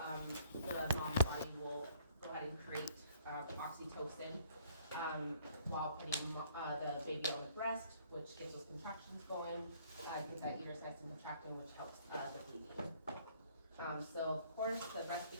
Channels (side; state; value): both; inverted; correlation -0.59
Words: the mom's body will go ahead and create oxytocin while putting the baby on the breast, which gets those contractions going, gets that uterus nice and contracting, which helps the bleeding. So of course, the